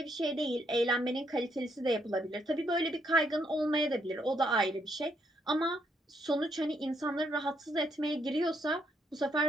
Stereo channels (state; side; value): normal; both; correlation 0.74